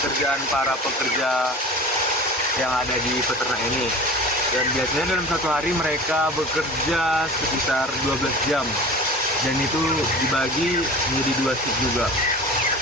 para pekerja yang ada di peternak ini. Dan biasanya dalam satu hari mereka bekerja sekitar 12 jam. Dan itu dibagi menjadi 2 shift juga.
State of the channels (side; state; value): both; normal; correlation 0.37